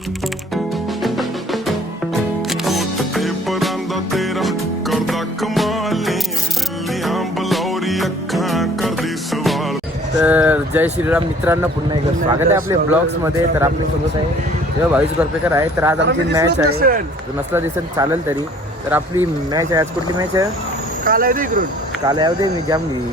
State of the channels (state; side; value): normal; both; correlation 0.54